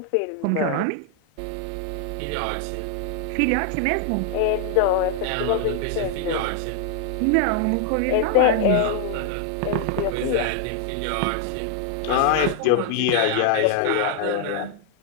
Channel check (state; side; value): different; both; correlation 0.00